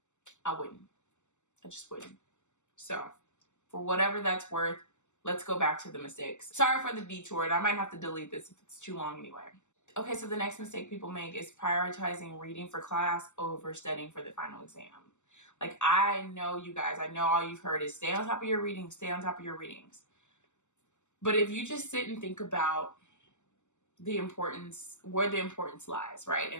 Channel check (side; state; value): right; late; 0.84 ms